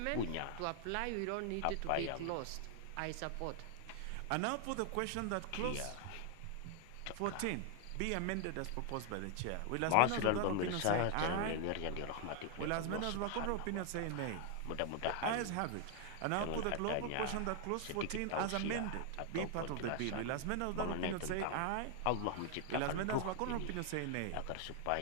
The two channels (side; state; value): both; different; correlation 0.00